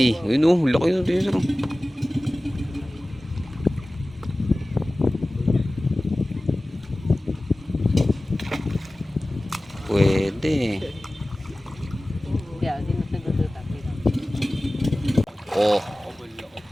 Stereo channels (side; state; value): both; normal; correlation 0.97